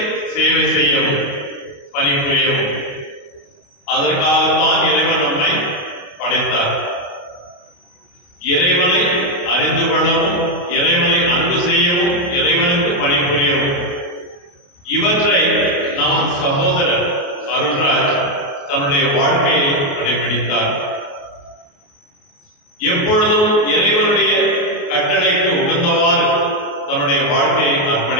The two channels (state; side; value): late; right; 28 ms